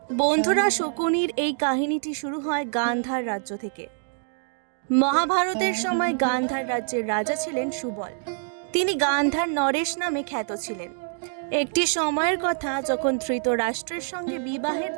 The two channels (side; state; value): left; silent; 61 dB below the other